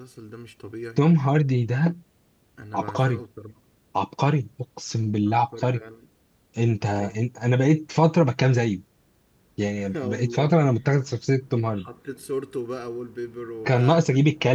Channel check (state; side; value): identical; both; correlation 1.00